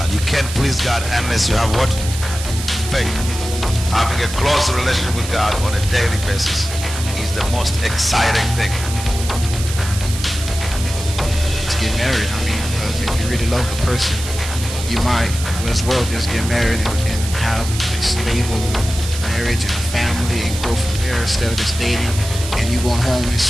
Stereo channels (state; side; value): noise; right; hiss, 9 dB below the sound